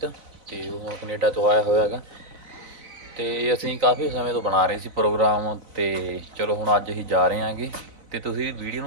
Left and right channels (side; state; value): left; late; 4.0 ms